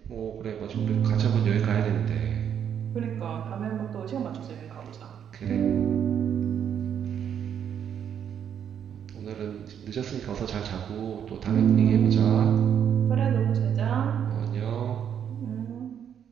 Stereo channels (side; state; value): left; quieter; 8.7 dB